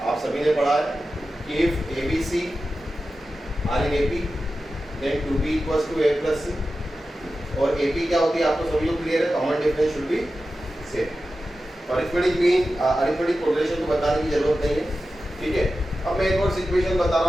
आप सभी ने पढ़ा है कि if a b c are in A P then two b equals to a plus c, और ए पी क्या होती है आपको सभी को क्लियर है। Common difference should be same. Arithmetic correlation को बताने की जरूरत नहीं है, ठीक है। अब मैं एक और सिचुएशन बता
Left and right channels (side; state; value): both; normal; correlation 0.93